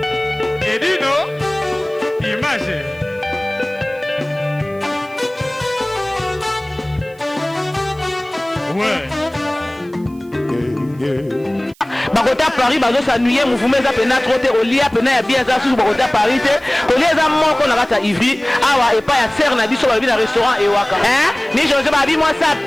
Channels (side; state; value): right; noise; hiss, 29 dB below the sound